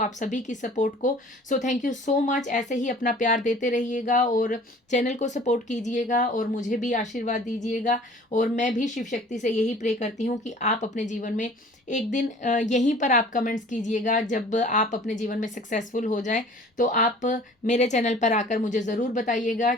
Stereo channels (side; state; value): both; normal; correlation 0.48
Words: सभी की सपोर्ट को। So thank you so much. ऐसे ही अपना प्यार देते रहिएगा और चैनल को सपोर्ट कीजिएगा और मुझे भी आशीर्वाद दीजिएगा। और मैं भी शिव शक्ति से यही प्रे करती हूँ कि आप अपने जीवन में एक दिन यहीं पर आप कमेंट्स कीजिएगा, जब आप अपने जीवन में सक्सेसफुल हो जाएं तो आप मेरे चैनल पर आकर मुझे ज़रूर बताइएगा